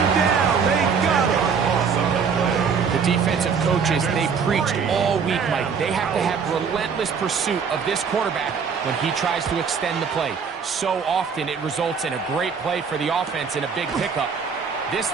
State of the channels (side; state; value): left; quieter; 6.1 dB